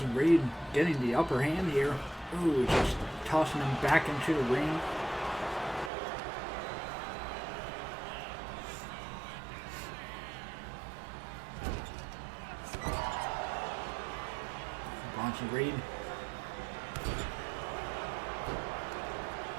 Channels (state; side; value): drops out; left; at 5.9 s